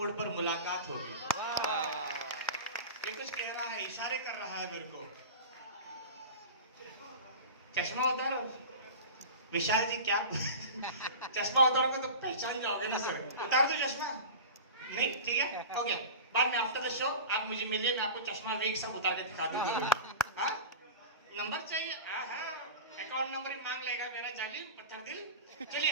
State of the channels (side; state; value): both; inverted; correlation -0.31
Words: पर मुलाकात होगी। ये कुछ कह रहा है, इशारे कर रहा है मेरे को। चश्मा उतारो विशाल जी, क्या चश्मा उतारोगे तो पहचान जाओगे ना सर। उतार दो चश्मा? नहीं, ठीक है, ओके। बाद में आफ्टर द शो आप मुझे मिलिए, मैं आपको चश्मा वीक सब उतार के दिखा दूंगा। हाँ, नंबर चाहिए? अकाउंट नंबर ही मांग लेगा मेरा जालिम पत्थर दिल। चलिए,